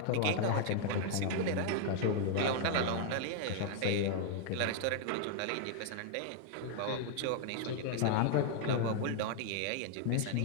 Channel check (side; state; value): both; different; correlation 0.00